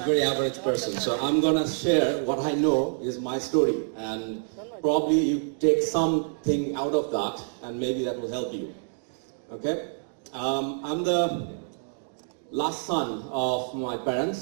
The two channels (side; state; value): left; silent; digital silence